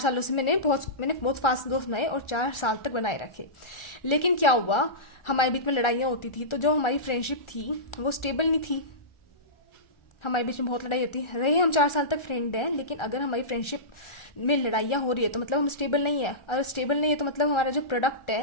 से मैंने बहुत फास्ट दोस्त बनाए और 4 साल तक बनाए रखे। लेकिन क्या हुआ, हमारे बीच में लड़ाइयाँ होती थी, तो जो हमारी फ्रेंडशिप थी वो स्टेबल नहीं थी। हमारे बीच में बहुत लड़ाई होती रही, हम 4 साल तक फ्रेंड हैं, लेकिन अगर हमारी फ्रेंडशिप में लड़ाइयाँ हो रही है तो मतलब हम स्टेबल नहीं है। अगर स्टेबल नहीं है तो मतलब हमारा जो प्रोडक्ट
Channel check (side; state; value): right; late; 1.4 ms